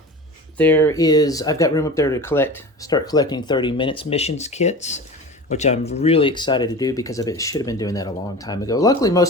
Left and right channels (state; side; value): normal; both; correlation 0.34